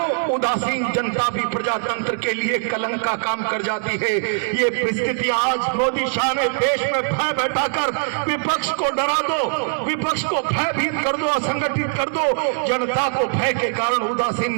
उदासीन जनता भी प्रजातंत्र के लिए कलंक का काम कर जाती है। ये परिस्थिति आज मोदी शाह ने देश में भय बैठाकर विपक्ष को डरा दो, विपक्ष को भयभीत कर दो, असंगठित कर दो, जनता को भय के कारण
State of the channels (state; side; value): silent; left; digital silence